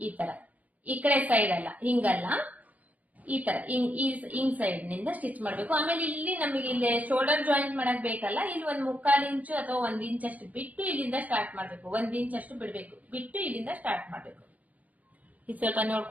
ಈ ತರ, ಈ ಕಡೆ ಸೈಡ್ ಅಲ್ಲ, ಹಿಂಗಲ್ಲ, ಈ ತರ ಹಿಂಗ್ ಸೈಡ್ ನಿಂದ ಸ್ಟಿಚ್ ಮಾಡ್ಬೇಕು. ಆಮೇಲೆ ಇಲ್ಲಿ ನಮಗೆ ಇಲ್ಲಿ ಶೋಲ್ಡರ್ ಜಾಯಿಂಟ್ ಮಾಡಕ್ ಬೇಕಲ್ಲ, ಇಲ್ಲಿ 1/4 ಇಂಚು ಅಥವಾ 1 ಇಂಚ್ ಅಷ್ಟು ಬಿಟ್ಟು ಇಲ್ಲಿಂದ ಸ್ಟಾರ್ಟ್ ಮಾಡ್ಬೇಕು. 1 ಇಂಚ್ ಅಷ್ಟು ಬಿಡ್ಬೇಕು, ಬಿಟ್ಟು ಇಲ್ಲಿಂದ ಸ್ಟಾರ್ಟ್ ಮಾಡ್ಬೇಕು. ಇದು ಸ್ವಲ್ಪ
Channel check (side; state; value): left; late; 0.075 ms